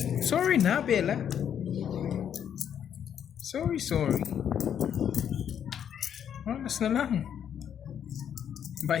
Sorry na, Bella. Sorry. Oras na lang.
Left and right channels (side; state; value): right; quieter; 8.9 dB